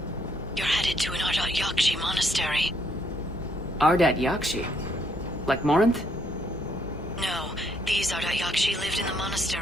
You're headed to an Ardat Yakshi monastery. Ardat Yakshi? Like Morinth? No, these Ardat Yakshi lived in the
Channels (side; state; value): both; normal; correlation 0.71